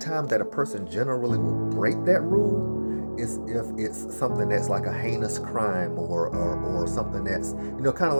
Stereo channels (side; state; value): both; inverted; correlation -1.00